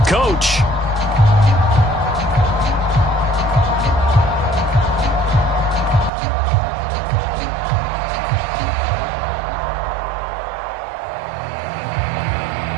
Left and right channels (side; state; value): left; drops out; at 6.1 s